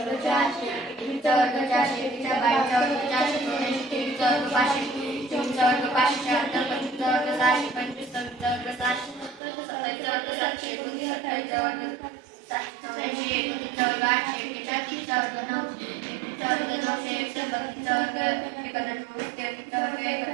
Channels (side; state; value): left; drops out; at 9.4 s